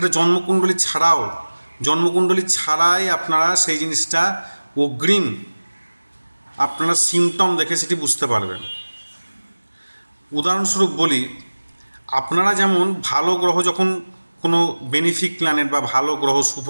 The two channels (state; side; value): inverted; both; correlation -1.00